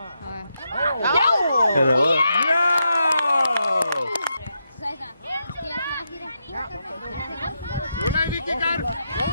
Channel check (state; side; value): inverted; both; correlation -0.83